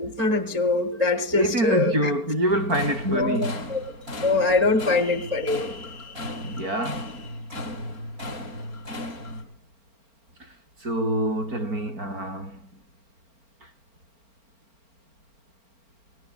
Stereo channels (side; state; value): left; late; 4.4 ms